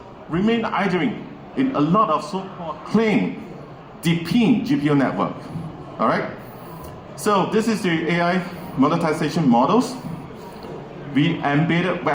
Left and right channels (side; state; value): both; identical; correlation 1.00